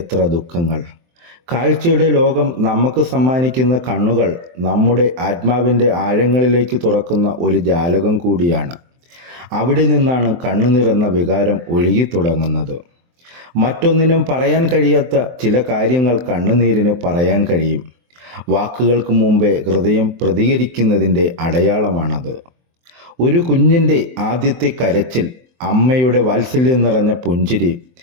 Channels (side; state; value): left; late; 23 ms